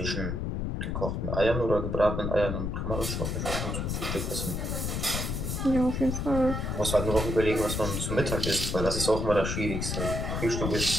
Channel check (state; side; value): noise; left; rumble, 2 dB below the sound